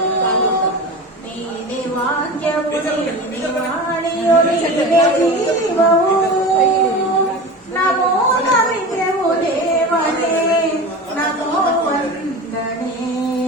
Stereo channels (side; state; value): both; normal; correlation 0.31